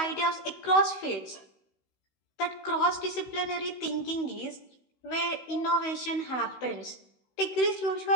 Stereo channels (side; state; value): right; late; 16 ms